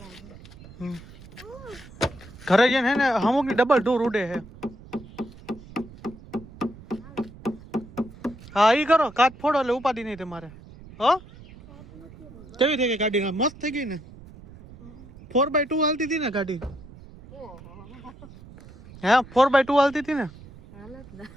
ઘરે જઈને હે ને અમુક ની ડબલ ડોર ઉડે છે. હા ઈ કરો, કાચ ફોડો એટલે ઉપાધિ નહીં તમારે. હો કેવી થઈ ગઈ ગાડી? મસ્ત થઈ ગઈ ને. 4x2 હાલતી હતી ને ગાડી. હે 4x2 હાલતી હતી ને.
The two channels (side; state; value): right; noise; rumble, 19 dB below the sound